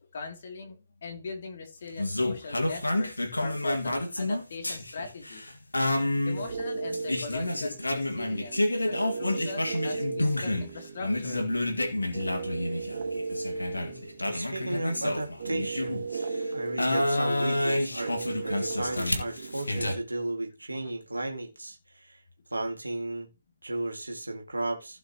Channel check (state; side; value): inverted; both; correlation -0.93